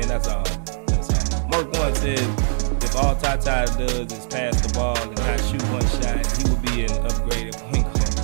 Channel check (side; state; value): left; silent; 64 dB below the other